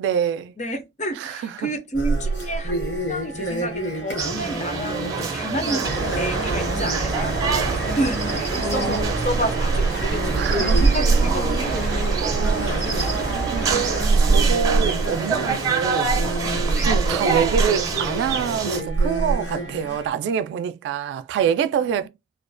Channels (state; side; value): quieter; left; 3.8 dB